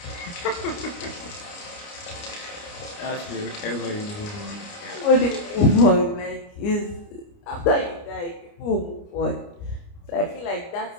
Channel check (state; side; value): late; right; 29 ms